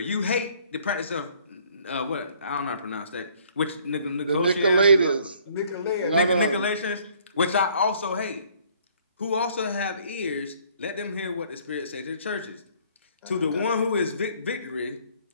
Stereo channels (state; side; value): inverted; both; correlation -0.60